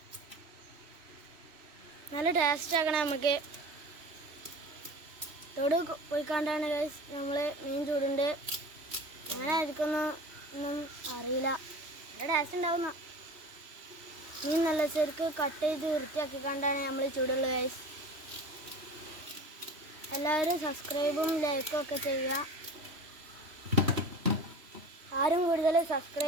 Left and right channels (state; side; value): late; left; 3.1 ms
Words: നല്ല ടേസ്റ്റ് ആക്കണം. നമുക്ക് തൊടു പോയിക്കാണ്ടാണ് ഗൈസ് നമ്മൾ മീൻ ചൂടുണ്ട്. എങ്ങനെ ആയിരിക്കൊന്നും അറിയില്ല. നല്ല ടേസ്റ്റ് ഉണ്ടാവുന്ന മീൻ നല്ല ശരിക്ക് കട്ട് ചെയ്ത് വൃത്തിയാക്കി കണ്ടാണ് നമ്മൾ ചൂടുള്ളത് ഗൈസ്. എല്ലാവരും സബ്സ്ക്രൈബും ലൈക്കും ഒക്കെ ചെയ്യുക. ആരും കൂടുതൽ